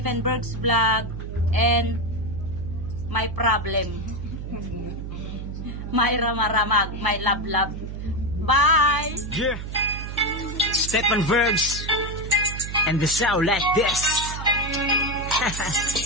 Berg's vlog and my problem. My ramaramag, my love. Bye! Yeah! Stephen Bergs and the sound like this.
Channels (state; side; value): noise; right; hum, 7 dB below the sound